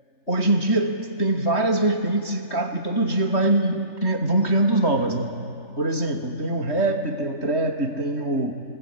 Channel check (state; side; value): late; right; 3.3 ms